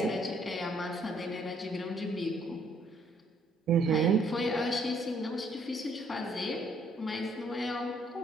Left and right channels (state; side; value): normal; both; correlation 0.66